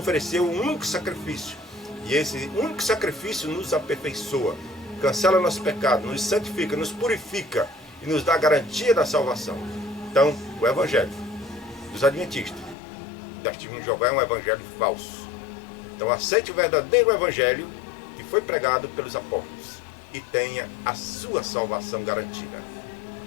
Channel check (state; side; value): drops out; right; at 12.8 s